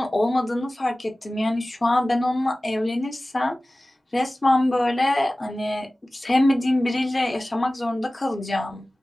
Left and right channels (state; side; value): normal; both; correlation 0.97